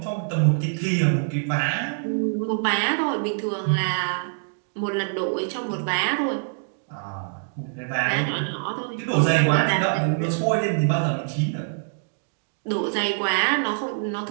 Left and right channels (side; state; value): left; silent; digital silence